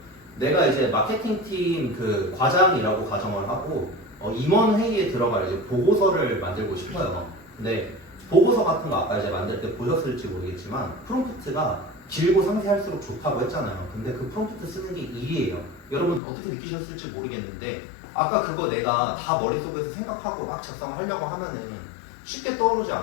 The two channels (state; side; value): drops out; right; at 16.2 s